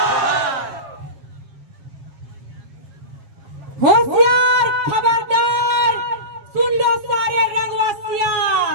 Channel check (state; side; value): late; left; 7.2 ms